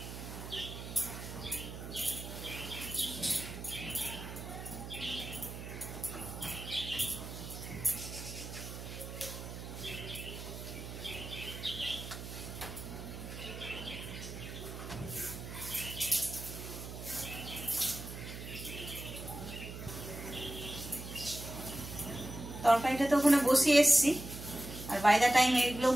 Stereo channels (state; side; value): noise; right; hum, 9 dB below the sound